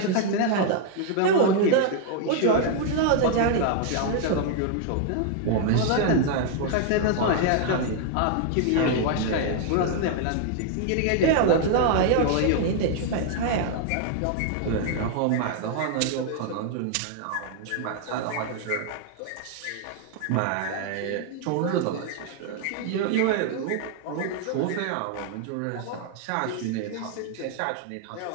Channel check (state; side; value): different; both; correlation 0.00